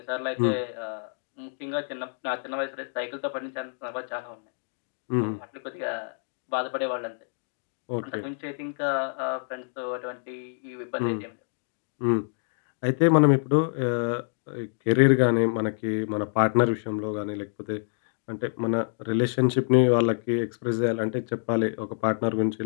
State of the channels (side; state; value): right; silent; digital silence